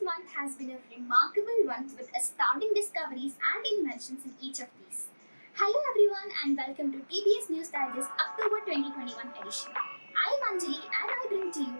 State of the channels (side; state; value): both; inverted; correlation -1.00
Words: month has been a remarkable one with astounding discoveries and inventions in each of these. Hello everyone and welcome to TBS News Digest October 2021 edition. I am Anjali and I bring to you